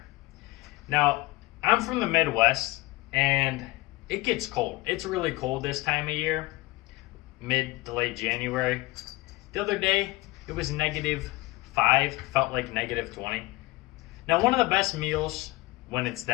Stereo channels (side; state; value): right; quieter; 21.1 dB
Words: Now, I'm from the Midwest, and it gets cold. It's really cold this time of year, mid to late January. The other day, it was -5, felt like -20. Now, one of the best meals when it's